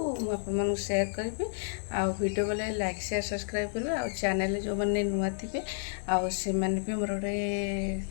मुझे शेयर करी वीडियो बोले लाइक शेयर सब्सक्राइब करेंगे आ चैनल जो मैंने नुआ थे आने भी मोर गोटे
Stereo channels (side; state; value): right; silent; digital silence